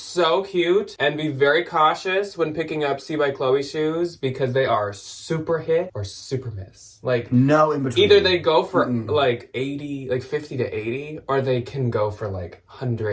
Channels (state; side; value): identical; both; correlation 1.00